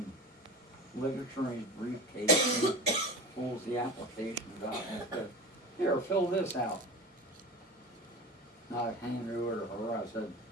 literature in his briefcase and pulls the applications out and said, here, fill this out. And I handed it over to her. I said,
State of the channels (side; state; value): both; normal; correlation 0.31